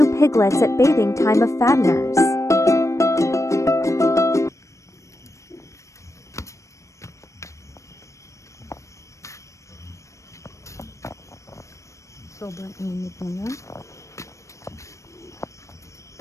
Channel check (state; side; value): late; right; 0.15 ms